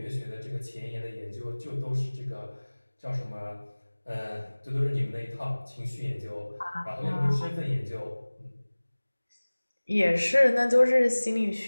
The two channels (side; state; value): both; inverted; correlation -1.00